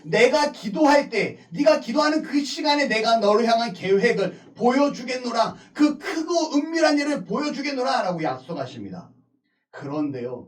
내가 기도할 때, 네가 기도하는 그 시간에 내가 너를 향한 계획을 보여주겠노라. 그 크고 은밀한 일을 보여주겠노라 라고 약속하십니다.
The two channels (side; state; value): both; identical; correlation 1.00